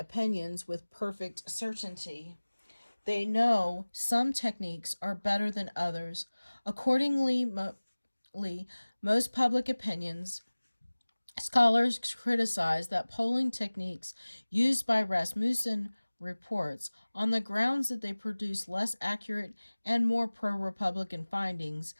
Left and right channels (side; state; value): both; inverted; correlation -1.00